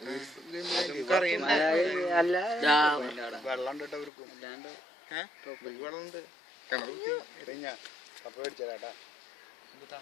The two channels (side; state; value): right; drops out; at 4.1 s